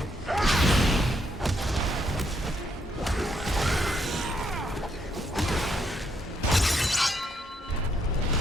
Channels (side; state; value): both; normal; correlation 0.75